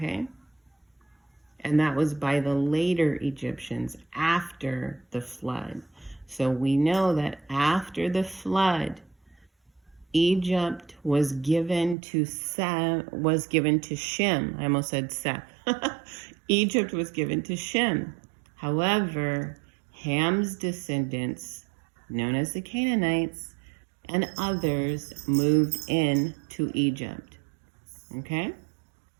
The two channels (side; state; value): left; drops out; at 12.0 s